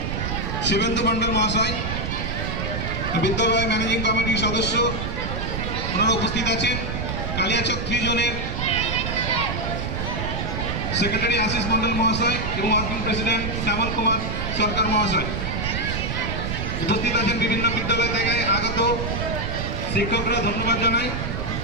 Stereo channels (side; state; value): right; noise; rumble, 3 dB below the sound